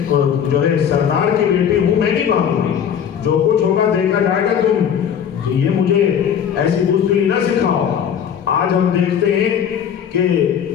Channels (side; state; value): right; quieter; 8.4 dB